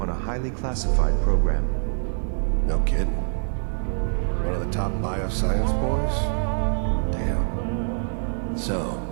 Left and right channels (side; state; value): left; silent; 62 dB below the other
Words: a highly classified program. No kidding. One of the top bioscience boys? Damn. So,